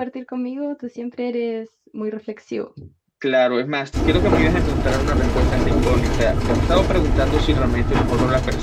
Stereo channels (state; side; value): identical; both; correlation 1.00